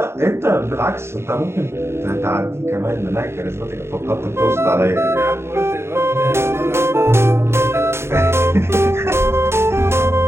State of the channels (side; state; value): left; late; 0.12 ms